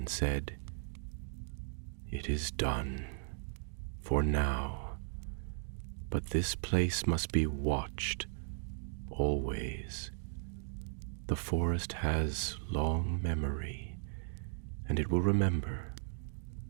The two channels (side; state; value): left; silent; digital silence